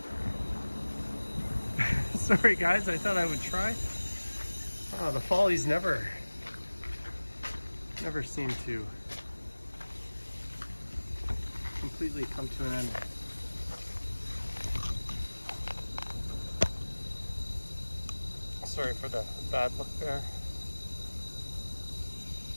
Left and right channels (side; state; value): both; inverted; correlation -1.00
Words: Sorry guys, I thought I would try. Oh, the follies never seem to completely come to an end. Sorry for the bad look there.